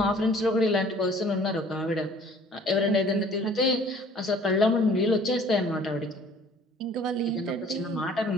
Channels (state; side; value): normal; both; correlation 0.53